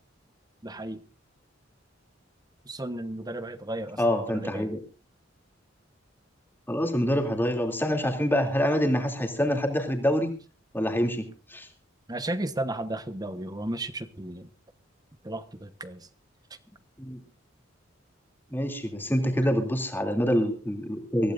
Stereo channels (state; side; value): normal; both; correlation 0.81